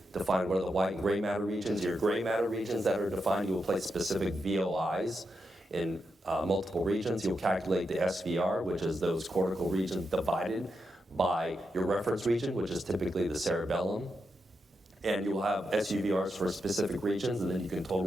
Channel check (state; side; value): normal; both; correlation 0.85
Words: define what are the white and gray matter regions. Your gray matter regions that are defined, you will place specific VOIs in multiple regions. You'll calculate the SVR, which is those cortical regions divided by your reference region, which is typically the cerebellum. And you will have SUVRs for specific regions, and then you can